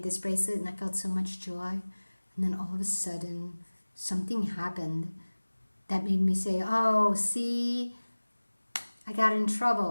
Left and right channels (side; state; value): both; inverted; correlation -1.00